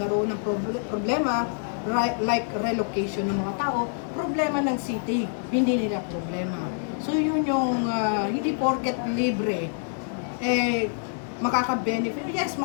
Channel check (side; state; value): right; silent; digital silence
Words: ng problema like relocation ng mga tao, problema ng city, hindi nila problema. So yun yung hindi porket libre, makaka-benefit. Yes,